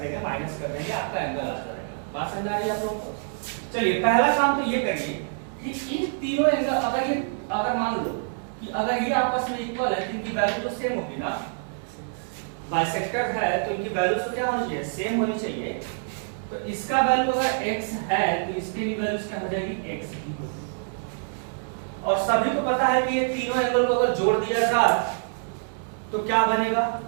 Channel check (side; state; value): left; silent; digital silence